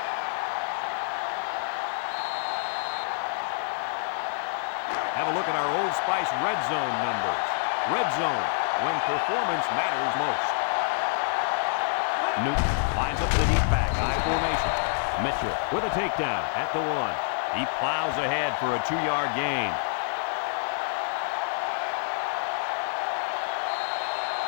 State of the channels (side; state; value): right; silent; 60 dB below the other